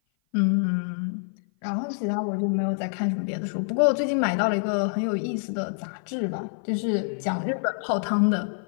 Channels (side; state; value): right; silent; 56 dB below the other